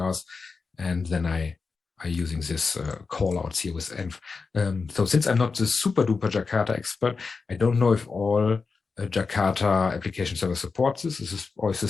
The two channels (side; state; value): right; quieter; 4.6 dB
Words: and then I'm using this callouts here with env. So since I'm not the super duper Jakarta expert, I don't know if all Jakarta Application Server supports this? Or is